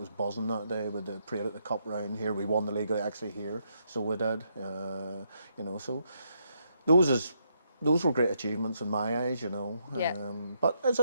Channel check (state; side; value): inverted; both; correlation -0.77